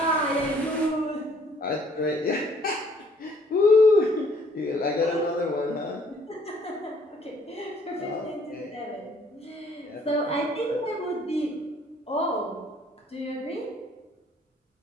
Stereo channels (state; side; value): normal; both; correlation 0.61